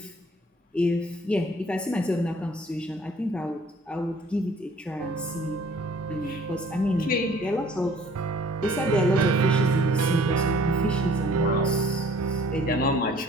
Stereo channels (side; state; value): both; normal; correlation 0.55